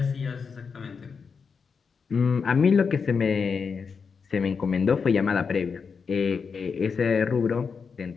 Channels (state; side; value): quieter; right; 5.6 dB